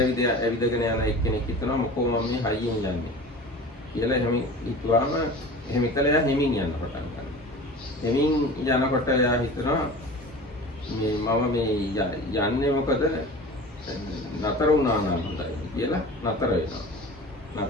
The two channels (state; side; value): normal; both; correlation 0.37